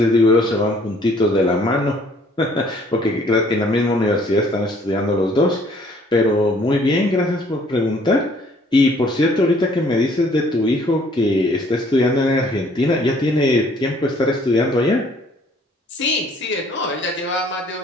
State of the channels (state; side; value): normal; both; correlation 0.60